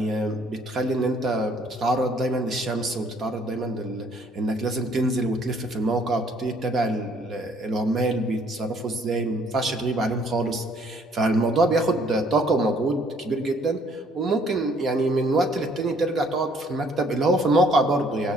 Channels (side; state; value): both; normal; correlation 0.62